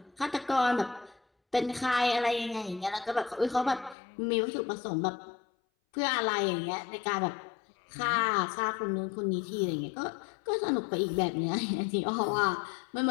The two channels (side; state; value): right; drops out; at 4.0 s